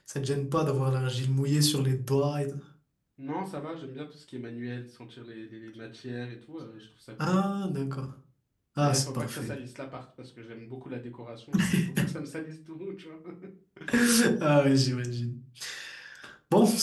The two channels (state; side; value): identical; both; correlation 1.00